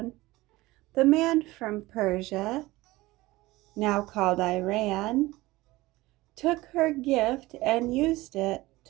The man from Persia, now called Iran, took her gift and used it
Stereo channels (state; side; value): quieter; left; 19.4 dB